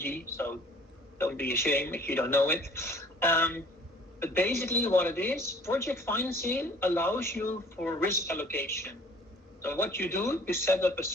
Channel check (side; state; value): both; normal; correlation 0.52